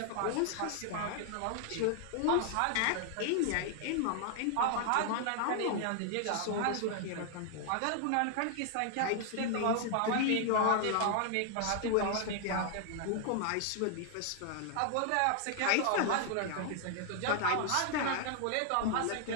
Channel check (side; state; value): both; different; correlation 0.00